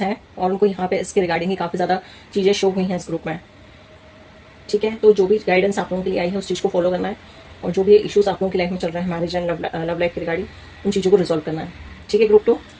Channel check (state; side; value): identical; both; correlation 1.00